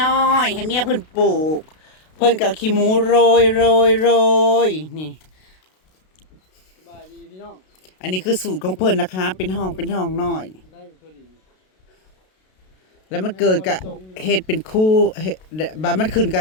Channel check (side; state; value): right; late; 32 ms